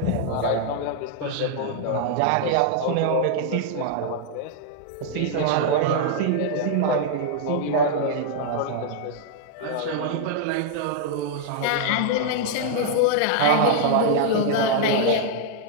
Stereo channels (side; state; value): both; different; correlation -0.01